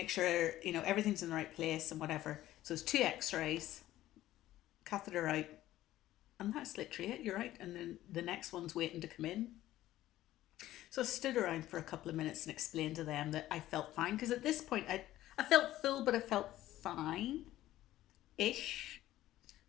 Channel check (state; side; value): quieter; right; 14.6 dB